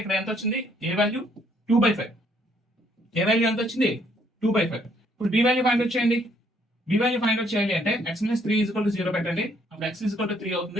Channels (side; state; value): both; normal; correlation 0.67